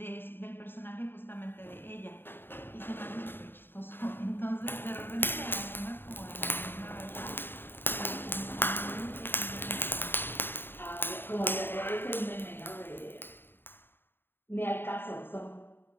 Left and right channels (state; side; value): late; right; 0.099 ms